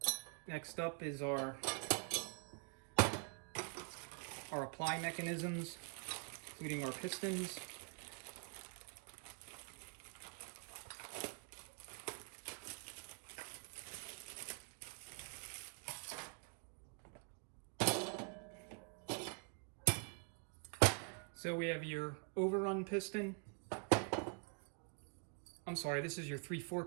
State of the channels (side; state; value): left; quieter; 38.9 dB